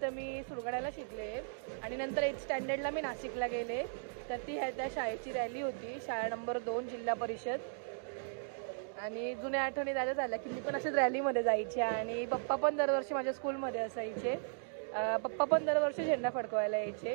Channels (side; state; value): left; silent; digital silence